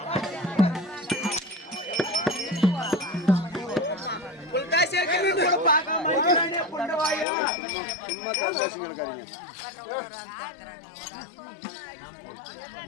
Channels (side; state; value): right; drops out; at 7.2 s